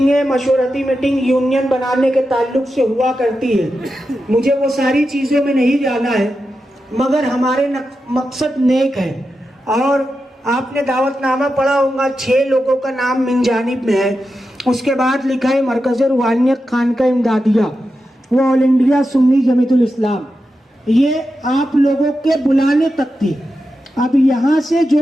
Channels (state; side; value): normal; both; correlation 0.89